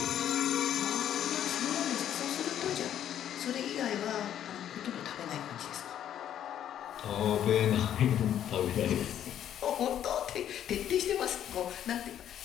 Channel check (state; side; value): quieter; right; 10.5 dB